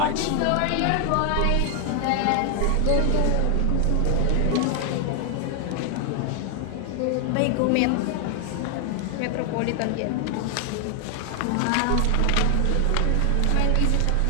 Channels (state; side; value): different; both; correlation 0.00